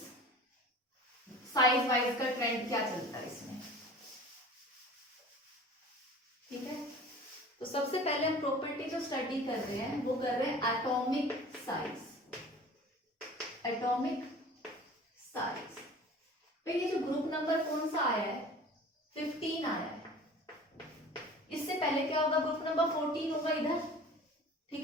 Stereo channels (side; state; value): both; normal; correlation 0.42